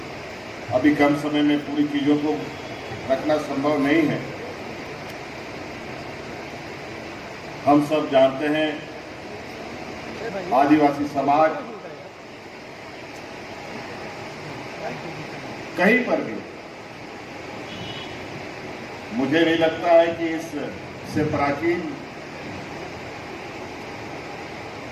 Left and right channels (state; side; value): identical; both; correlation 1.00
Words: अभी कम समय में पूरी चीजों को रखना संभव नहीं है। हम सब जानते हैं आदिवासी समाज कहीं पर भी, मुझे नहीं लगता है कि इससे प्राचीन